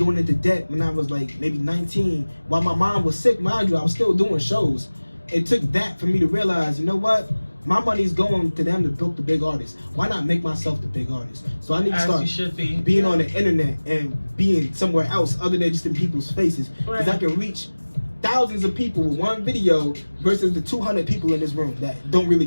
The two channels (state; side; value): inverted; both; correlation -1.00